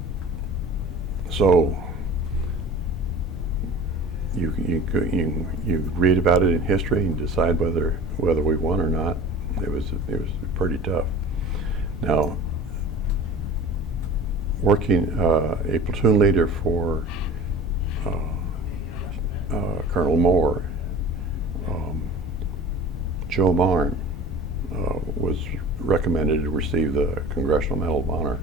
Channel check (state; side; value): normal; both; correlation 0.39